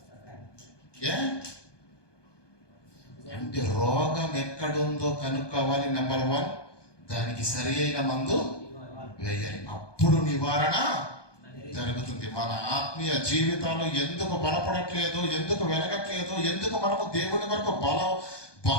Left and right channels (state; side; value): late; right; 1.2 ms